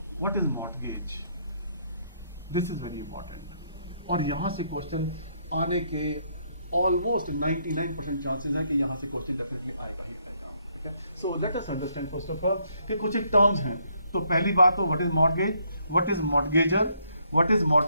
what is mortgage, this is very important, और यहां से क्वेश्चन आने के ऑलमोस्ट 99% चांसेस हैं कि यहाँ से क्वेश्चन डेफिनेटली आएगा ही आएगा, ठीक है। So let us understand first of all कि कुछ एक टर्म्स हैं। तो पहली बात तो what is mortgage, what is mortgager, what is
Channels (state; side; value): inverted; both; correlation -0.72